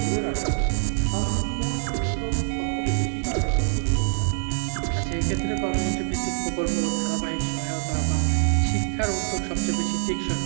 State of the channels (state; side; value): silent; left; digital silence